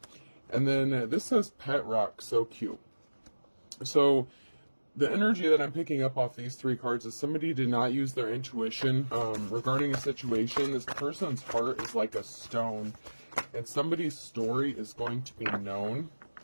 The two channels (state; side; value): inverted; both; correlation -1.00